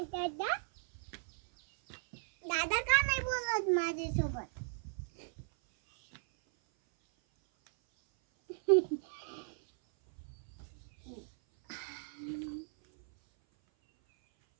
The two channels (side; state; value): left; silent; 54 dB below the other